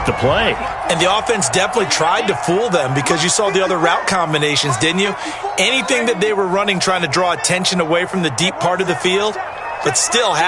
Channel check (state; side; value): identical; both; correlation 1.00